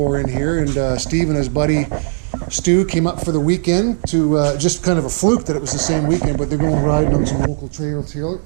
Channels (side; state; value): left; silent; digital silence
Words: in here. And Steve and his buddy Stu came up for the weekend to just kind of a fluke that it was the same weekend, but they're going riding on some local trails here